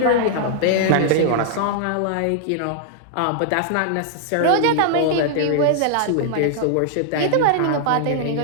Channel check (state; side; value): different; both; correlation 0.00